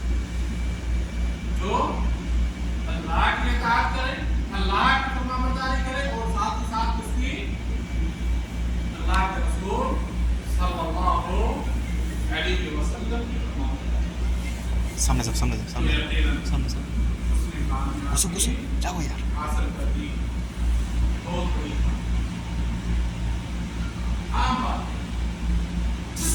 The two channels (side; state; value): both; identical; correlation 1.00